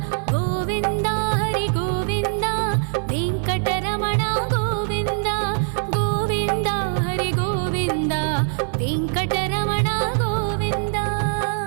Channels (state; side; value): silent; left; 59 dB below the other